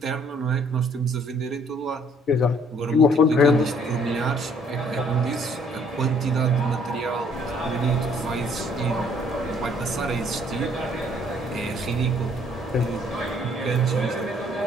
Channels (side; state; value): both; normal; correlation 0.62